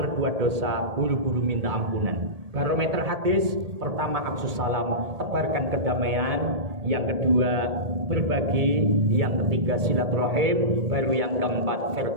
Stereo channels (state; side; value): late; left; 1.8 ms